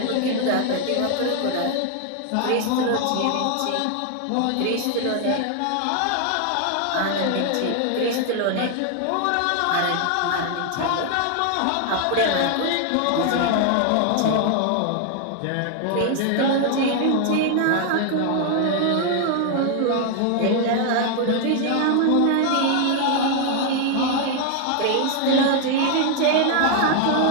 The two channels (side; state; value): both; different; correlation 0.00